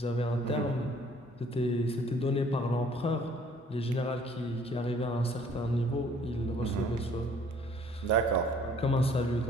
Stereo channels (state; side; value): normal; both; correlation 0.58